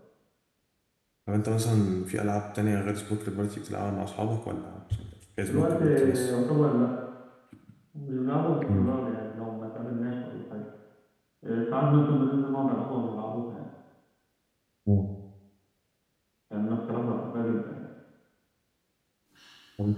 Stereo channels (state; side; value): identical; both; correlation 1.00